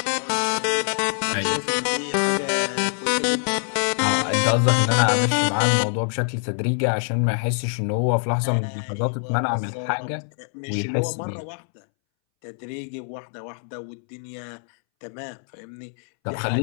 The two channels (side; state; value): right; silent; 63 dB below the other